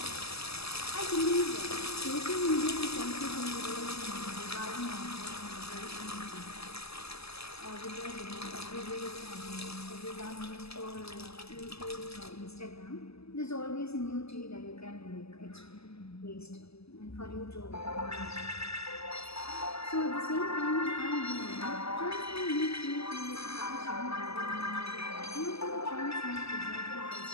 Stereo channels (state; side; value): late; right; 0.78 ms